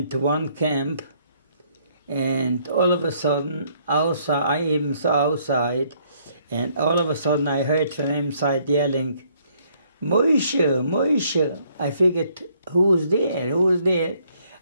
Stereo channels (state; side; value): inverted; both; correlation -0.67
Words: one camp, and all of a sudden, outside, I even saw outside, and all of a sudden I heard from inside yelling, Moshe, Moshe. I figured, who's there? Who's there?